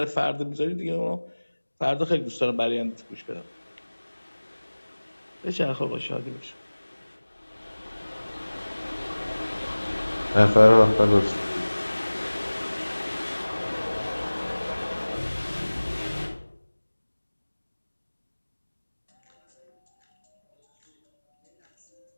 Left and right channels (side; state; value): both; inverted; correlation -1.00